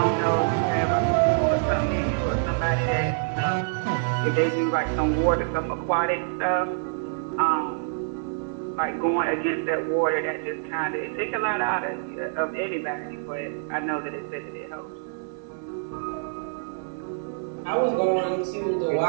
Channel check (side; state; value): left; silent; digital silence